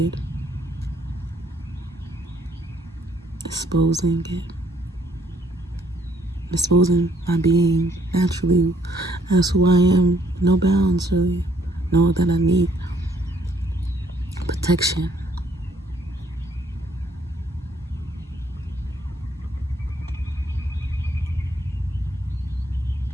Exposing it. Exposing my being naturally as who I am. No bounds, really. Know that I need protection.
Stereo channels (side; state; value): both; normal; correlation 0.66